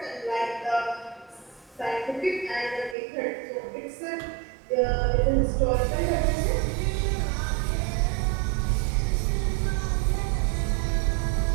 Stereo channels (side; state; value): left; drops out; at 3.0 s